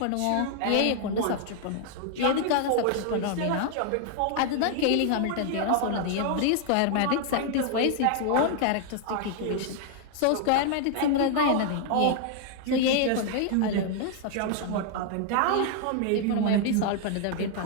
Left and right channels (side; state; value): both; different; correlation 0.00